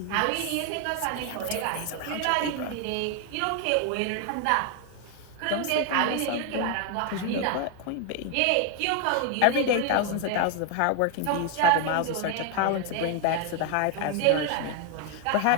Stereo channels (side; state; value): both; different; correlation 0.01